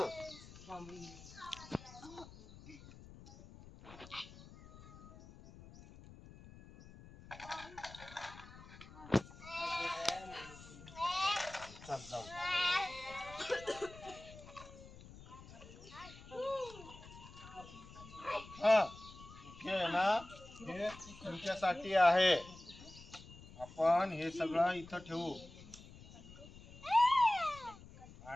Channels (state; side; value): noise; left; rumble, 18 dB below the sound